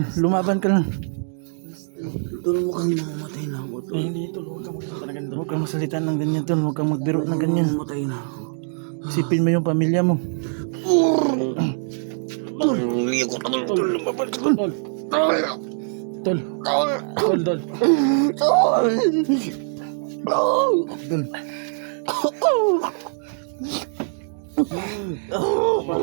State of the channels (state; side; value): silent; left; digital silence